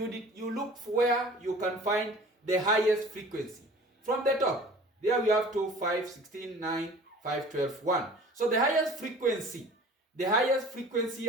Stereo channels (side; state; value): both; normal; correlation 0.45